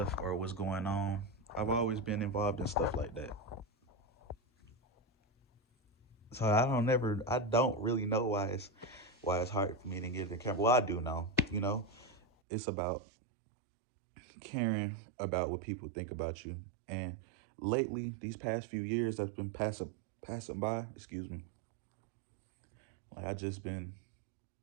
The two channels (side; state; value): left; drops out; at 12.2 s